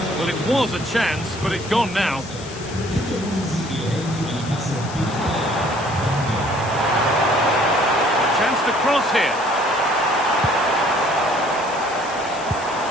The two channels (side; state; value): left; noise; hiss, 15 dB below the sound